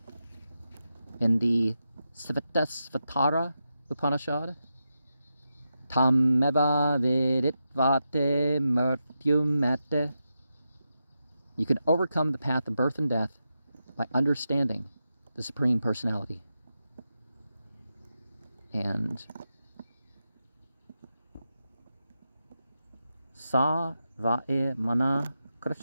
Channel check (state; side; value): inverted; both; correlation -0.88